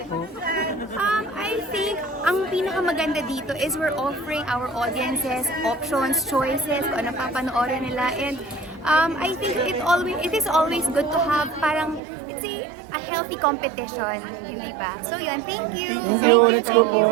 po? I think ang pinakamaganda dito is we're offering our audiences options, choices, kung ano papanoorin nila. And I think it is always good to have parang, it's a healthy competition, hindi ba? So yun, thank you! Thank you, let's go po.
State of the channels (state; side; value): drops out; left; at 12.0 s